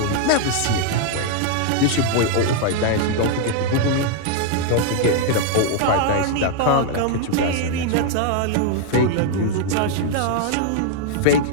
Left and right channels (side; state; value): both; different; correlation 0.00